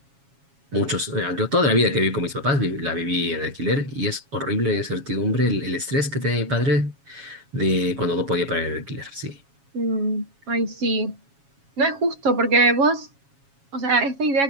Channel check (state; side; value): late; left; 7.3 ms